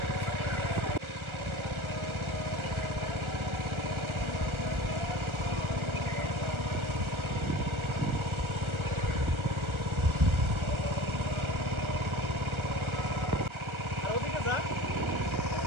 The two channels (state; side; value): late; left; 1.4 ms